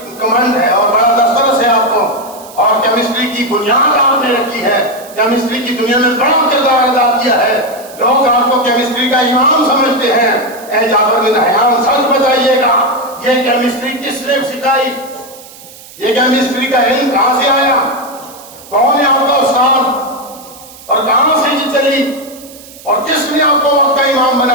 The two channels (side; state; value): right; noise; hiss, 20 dB below the sound